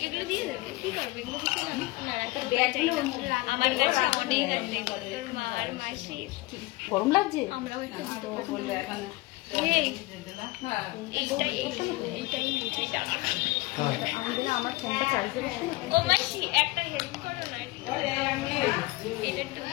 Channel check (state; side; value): quieter; right; 21.5 dB